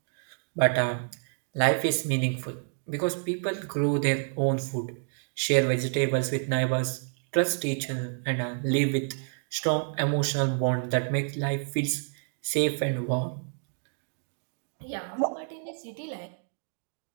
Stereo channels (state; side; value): silent; left; digital silence